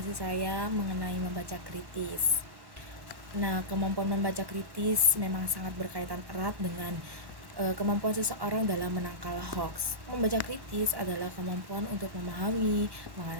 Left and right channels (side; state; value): left; late; 1.1 ms